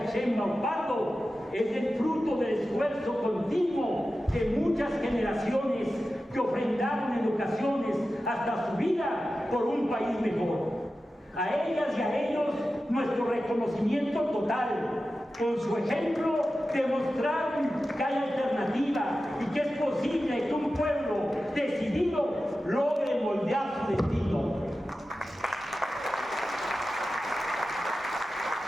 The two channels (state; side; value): normal; both; correlation 0.93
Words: Sheinbaum Pardo es el fruto del esfuerzo continuo de muchas generaciones que ofrendaron en ocasiones hasta su vida por un país mejor. A ellas y a ellos nuestro reconocimiento total. Con su ejemplo demostraron que hay alternativa y que es posible que un pueblo decidido logre moldear su destino.